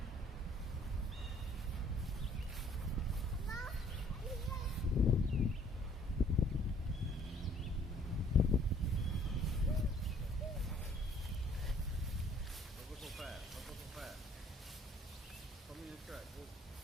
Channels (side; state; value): both; normal; correlation 0.59